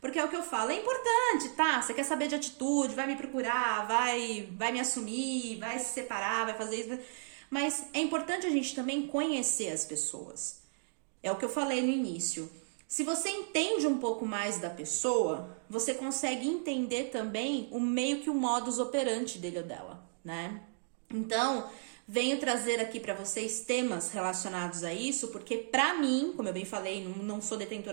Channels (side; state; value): left; silent; digital silence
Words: Porque é o que eu falo, é importante, tá? Você quer saber de atitude, vai me procurar, vai me assumir, vai se separar, vai fazer isso. Mas é importante a gente também conhecer as pessoas. É o que eu falei no início. Se você entende um pouco mais da pessoa, você consegue entender também o meio que o modus operandi dele ou dela, né? Então, venho trazer aqui para vocês temas relacionados a isso, porque pra mim, como eu bem falei, não sou